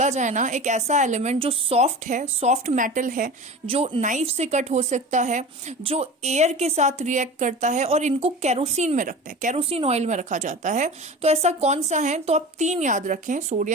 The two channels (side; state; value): both; normal; correlation 0.33